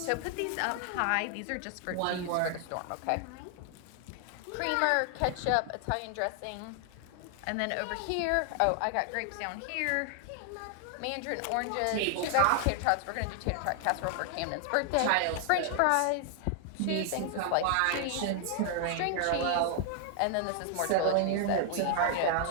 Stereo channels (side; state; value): both; different; correlation 0.00